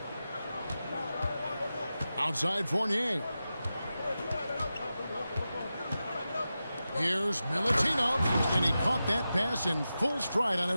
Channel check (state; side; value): inverted; both; correlation -0.92